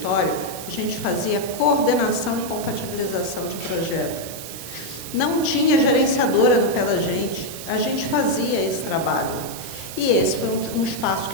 a gente fazia coordenação e compatibilização de projeto. Não tinha gerenciadora no pé da gente, a gente fazia esse trabalho. E esse foi um espaço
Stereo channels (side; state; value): right; noise; hiss, 11 dB below the sound